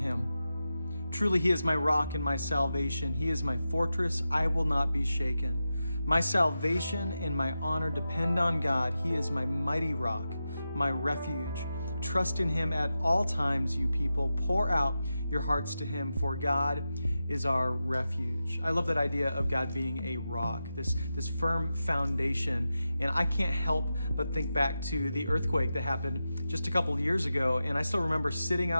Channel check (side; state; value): both; inverted; correlation -0.91